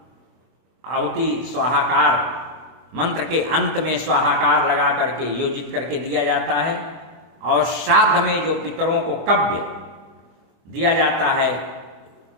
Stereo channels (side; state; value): left; late; 24 ms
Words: आहुति स्वाहाकार मंत्र के अंत में स्वाहाकार लगा करके योजित करके दिया जाता है, और श्राद्ध में जो पितरों को कव्य दिया जाता है